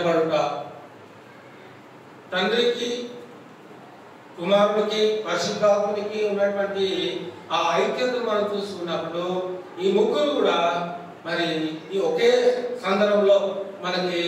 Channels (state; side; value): identical; both; correlation 1.00